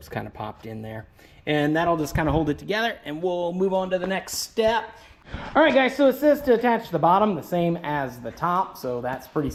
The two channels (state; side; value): identical; both; correlation 1.00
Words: kind of popped in there. And that'll just kind of hold it together, and we'll move on to the next step. All right, guys, so it says to attach the bottom the same as the top, so that's pretty